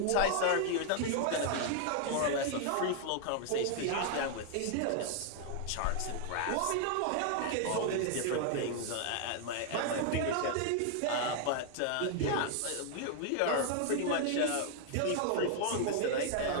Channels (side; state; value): both; different; correlation 0.00